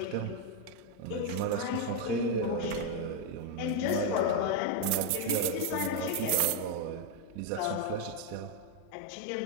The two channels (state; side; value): different; both; correlation 0.01